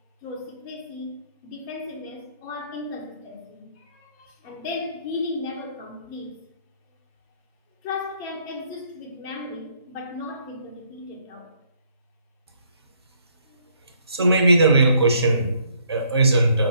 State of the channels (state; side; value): inverted; both; correlation -0.67